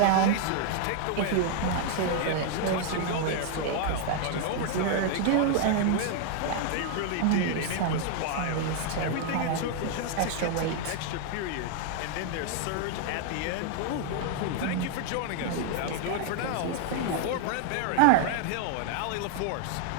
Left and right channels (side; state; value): both; different; correlation 0.00